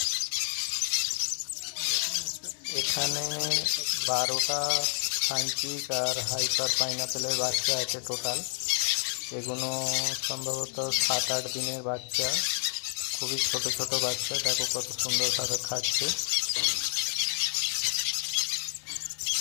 এখানে 12টা সানচিক আর হাইপার পাইনাপেলের বাচ্চা আছে টোটাল। এগুলো সম্ভবত 7-8 দিনের বাচ্চা, খুবই ছোট ছোট বাচ্চা। দেখো কত সুন্দরভাবে খাচ্ছে।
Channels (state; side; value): silent; right; digital silence